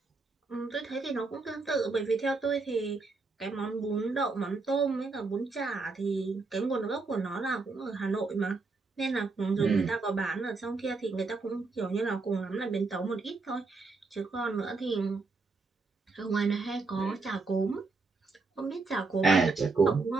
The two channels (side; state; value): left; quieter; 3.9 dB